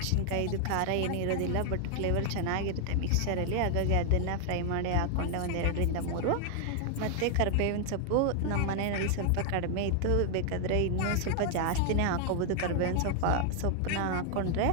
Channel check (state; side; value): different; both; correlation 0.00